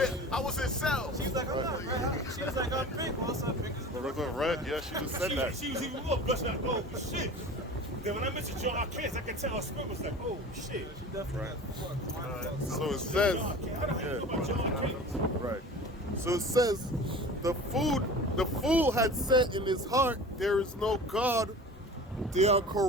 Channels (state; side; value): normal; both; correlation 0.39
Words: I was in cells. She's like, I'm not red. She was like, I'm pink. Also, pink is the Regular red, yeah, she just said that. She was even more blushing like, oh shit. Then when I mentioned John Arcanus, I could tell her spirit was like, oh shit. She definitely got So it says, John Arcanus. How the hell you know about John Arcanus? right. So it says, the fool had said in his heart, there is no God. They are